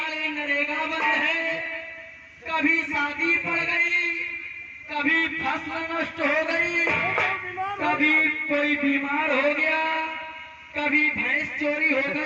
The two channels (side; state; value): both; identical; correlation 1.00